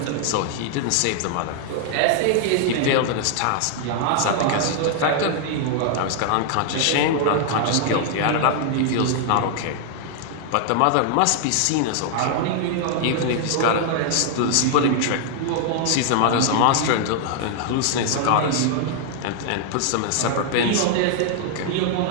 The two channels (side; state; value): both; different; correlation 0.00